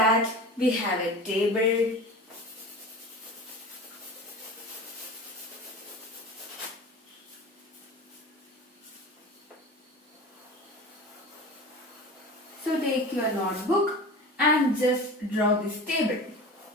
we have a table. So take your notebook and just draw this table.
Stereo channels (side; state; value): both; normal; correlation 0.34